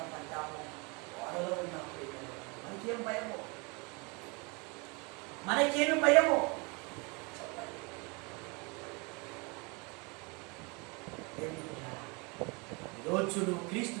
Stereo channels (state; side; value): quieter; left; 29.9 dB